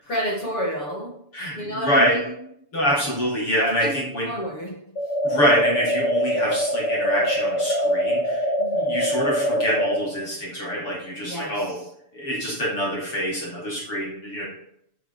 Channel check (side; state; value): right; late; 6.9 ms